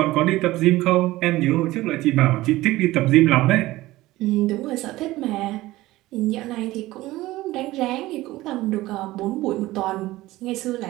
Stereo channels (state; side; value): quieter; left; 17.7 dB